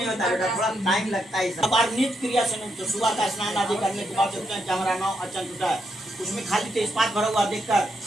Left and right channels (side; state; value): both; normal; correlation 0.80